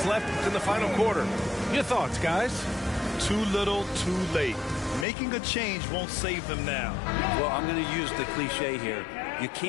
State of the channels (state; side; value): drops out; right; at 5.1 s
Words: left in the final quarter. Your thoughts, guys? Too little, too late. Making a change won't save them now. Well, I'm going to use the cliche here. You